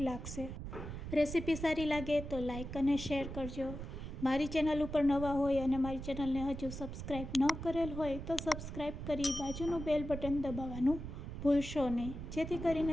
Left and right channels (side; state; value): right; noise; rumble, 8 dB below the sound